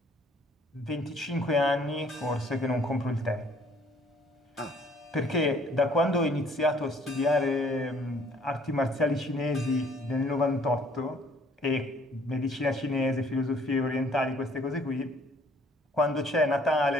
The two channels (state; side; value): normal; both; correlation 0.59